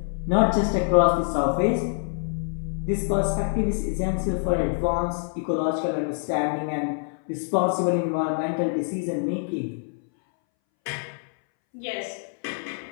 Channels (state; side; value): silent; right; 61 dB below the other